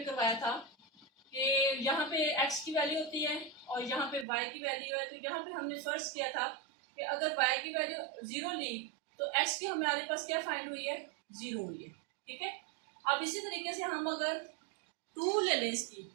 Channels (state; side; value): drops out; left; at 4.2 s